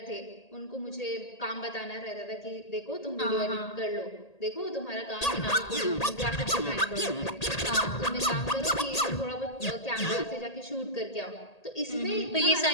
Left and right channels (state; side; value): late; right; 1.8 ms